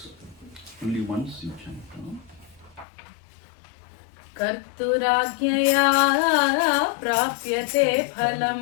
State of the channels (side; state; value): right; drops out; at 2.9 s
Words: only once you chant. कर्तुराज्ञया प्राप्यते